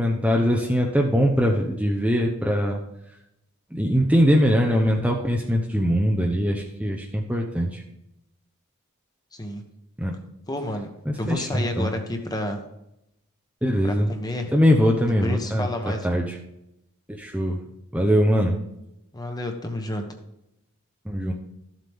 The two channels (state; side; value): normal; both; correlation 0.85